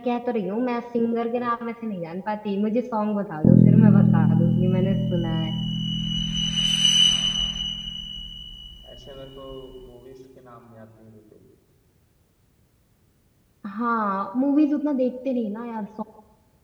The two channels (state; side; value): identical; both; correlation 1.00